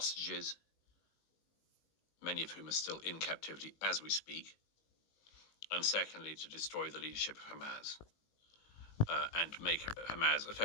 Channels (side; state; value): right; late; 19 ms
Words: many of whom are still in captivity as we speak, and secondly, to destroy the leadership of Hamas and make Hamas